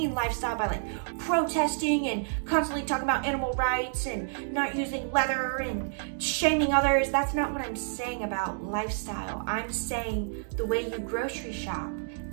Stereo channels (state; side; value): silent; left; digital silence